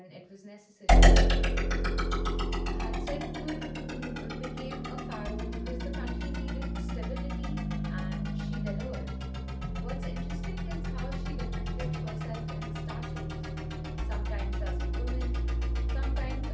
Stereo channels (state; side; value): identical; both; correlation 1.00